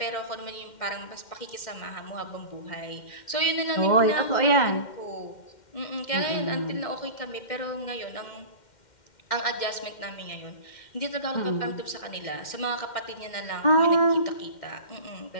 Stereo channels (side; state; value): right; late; 2.1 ms